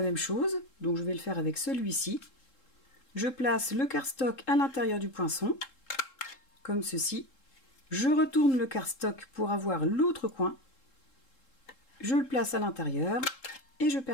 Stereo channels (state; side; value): late; right; 3.7 ms